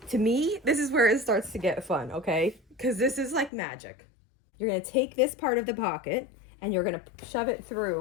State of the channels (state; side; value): drops out; right; at 3.5 s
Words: To me, this is where it starts to get fun, okay? Because this is like magic. You're gonna take this part of the pocket and you're gonna shove it